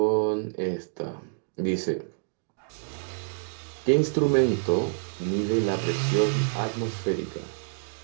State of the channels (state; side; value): silent; left; digital silence